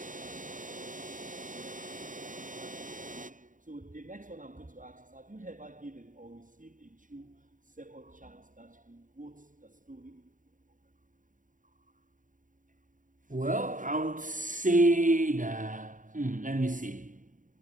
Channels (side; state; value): left; late; 0.38 ms